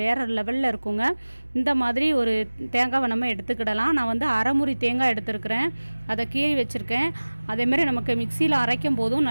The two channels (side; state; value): both; inverted; correlation -1.00